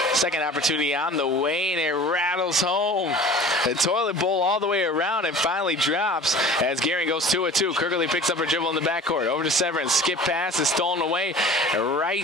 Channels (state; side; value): normal; both; correlation 0.42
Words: Second opportunity on the way, and it rattles home. The toilet bowl all the way around and finally drops as Gearing goes 2-2. Kirkley picks up her dribble in the backcourt. Over to Severance. Skip pass is stolen away